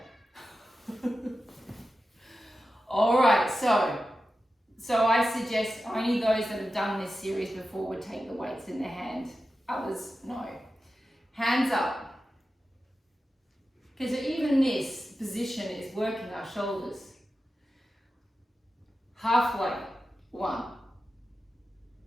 All right, so I suggest only those that have done this series before would take the weights in their hand. Others, no. Hands up. Because even this position is working our shoulders. Halfway. 1.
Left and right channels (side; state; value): both; normal; correlation 0.92